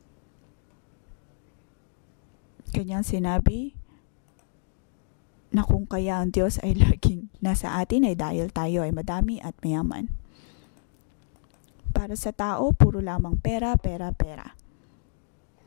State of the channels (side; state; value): right; silent; digital silence